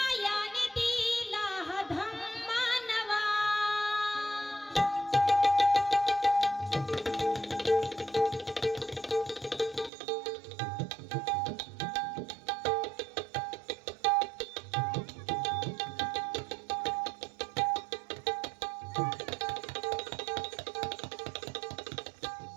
दिला हा धम्मा नवा.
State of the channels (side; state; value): left; drops out; at 9.9 s